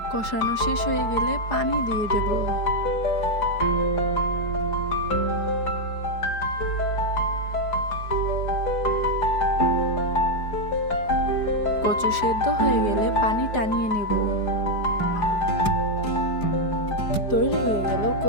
কষানো শেষ হয়ে গেলে পানি দিয়ে দেব। কচু সেদ্ধ হয়ে গেলে পানি টানিয়ে নেব। তৈরি হয়ে গেল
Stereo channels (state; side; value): late; right; 4.9 ms